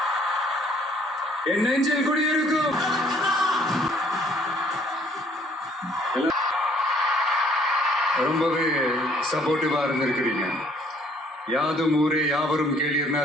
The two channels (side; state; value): both; normal; correlation 0.61